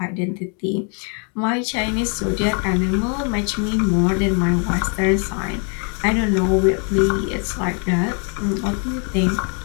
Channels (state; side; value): quieter; right; 39.4 dB